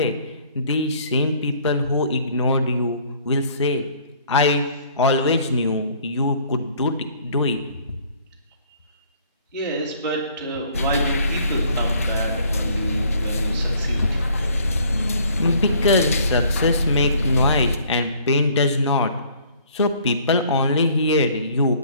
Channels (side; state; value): both; inverted; correlation -0.58